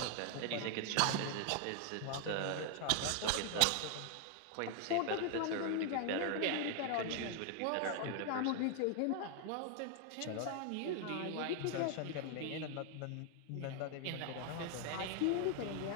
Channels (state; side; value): different; both; correlation 0.00